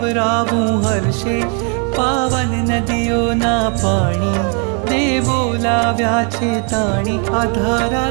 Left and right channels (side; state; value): left; quieter; 38.7 dB